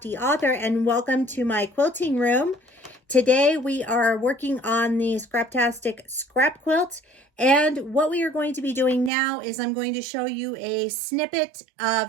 Author, and welcome to my quilting room. Today we are working on the Scraptastic Scrap Quilt, and what we are going to be doing now is I'm going to show you a snippet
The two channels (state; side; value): drops out; left; at 9.1 s